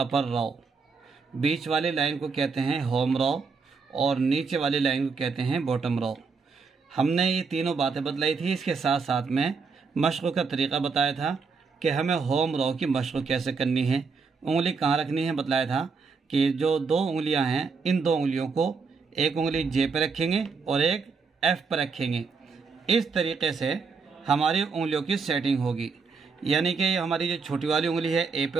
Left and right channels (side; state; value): left; quieter; 4.9 dB